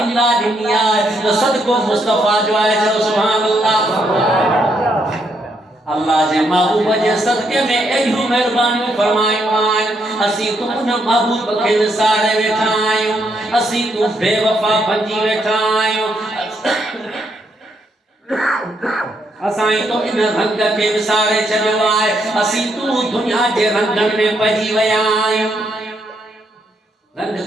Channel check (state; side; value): normal; both; correlation 0.76